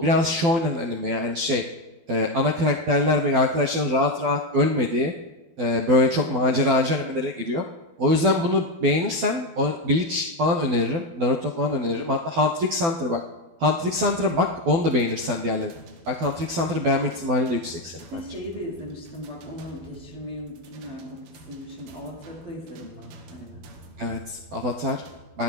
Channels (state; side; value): late; left; 12 ms